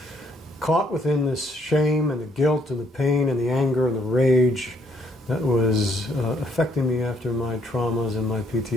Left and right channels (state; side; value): normal; both; correlation 0.69